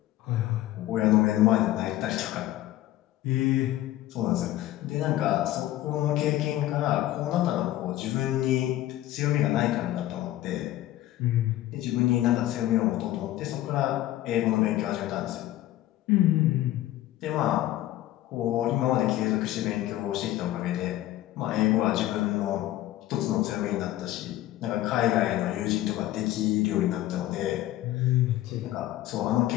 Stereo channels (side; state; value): right; quieter; 14.6 dB